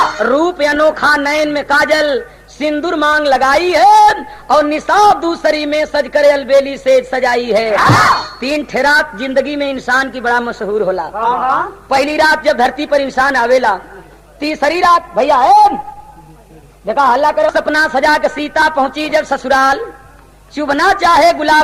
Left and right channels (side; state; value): both; identical; correlation 1.00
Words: रूप अनोखा नयन में काजल सिंदूर मांग लगाई है और निसाब दूसरी में सज करे अलबेली से सजाई है। 3 ठेरात जिंदगी में इंसान की बड़ा मशहूर होला पहली रात जब धरती पर इंसान आवेला तीसरी रात भैया है देखा हल्ला करो सपना सजा के सीता पहुंची जब ससुराल चुभना चाहे